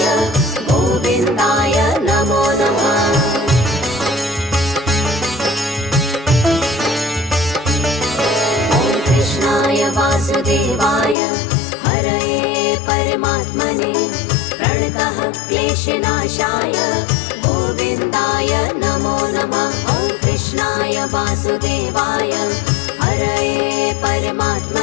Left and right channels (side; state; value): right; drops out; at 11.2 s